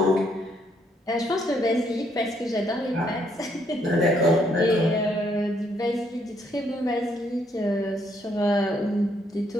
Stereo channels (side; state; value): both; normal; correlation 0.71